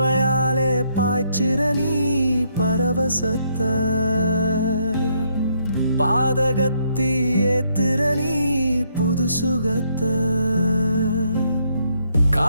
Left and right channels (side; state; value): both; inverted; correlation -0.73